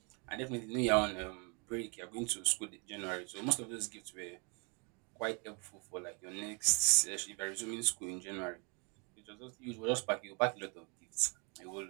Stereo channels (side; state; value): left; quieter; 34.0 dB